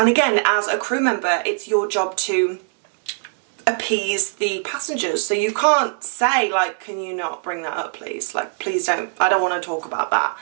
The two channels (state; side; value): silent; left; 60 dB below the other